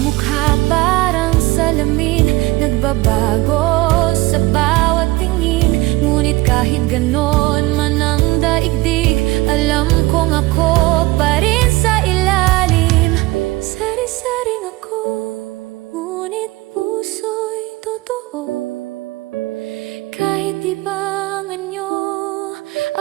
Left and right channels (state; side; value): quieter; left; 20.0 dB